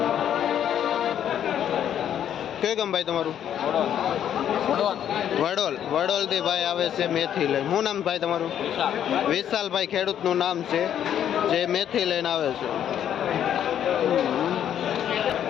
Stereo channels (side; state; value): right; quieter; 9.9 dB